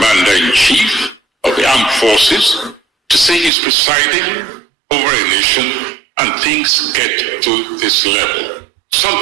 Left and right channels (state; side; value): drops out; left; at 3.5 s